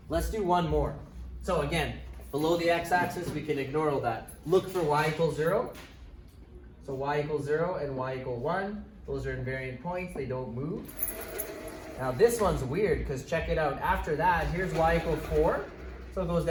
let's do one more. So again, below the x-axis, we can ignore all that. Look for y equals 0. So y equals 0 and y equal 1. Those are invariant points. They don't move. Now this one's weird because check it out. After that, here's y equal 4. So it goes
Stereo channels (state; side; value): identical; both; correlation 1.00